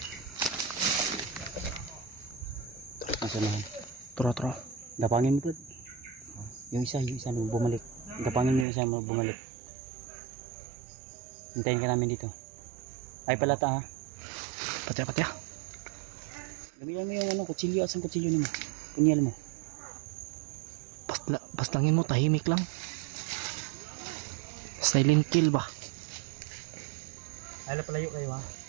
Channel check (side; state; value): left; drops out; at 8.7 s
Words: Nasa nahan. Turo. Dapangin mo pa. Yung isa nung bumalik. Dapangin mo yung isa mo bumalik. Hintayin ka namin dito. Ay palata ha. Patya. Bigyan mo yung ano, kutsilyo. Asan kutsilyo mo? Punyal mo. Paslangin mo, tahimik lang. Silent kill ba? Ay palayo kayo ha.